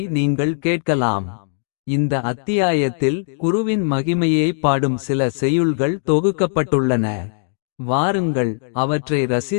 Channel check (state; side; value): silent; right; digital silence